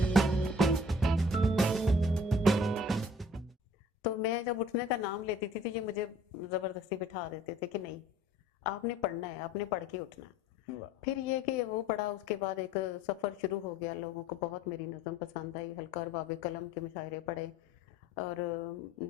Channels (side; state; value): both; normal; correlation 0.53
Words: میں جب اٹھنے کا نام لیتی تھی تو یہ مجھے زبردستی بٹھا دیتے تھے کہ نہیں آپ نے پڑھنا ہے، آپ نے پڑھ کے اٹھنا ہے۔ پھر یہ کہ وہ پڑھا، اس کے بعد ایک سفر شروع ہو گیا، لوگوں کو بہت میری نظم پسند آئی، حلقہ اور باب قلم کے مشاعرے پڑھے، اور